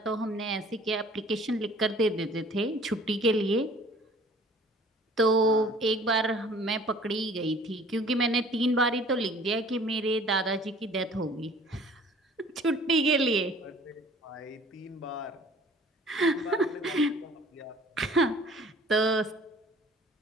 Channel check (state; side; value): normal; both; correlation 0.52